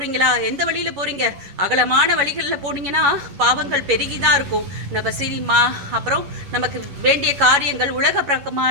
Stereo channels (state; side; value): late; left; 11 ms